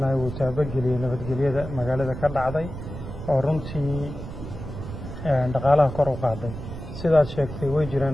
uu taabageliyay nabadgelyada magaalada ka dhacday oo runtii dhaqaalaha kor u qaaday sidaad sheegtay way jiraan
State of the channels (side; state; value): right; noise; rumble, 9 dB below the sound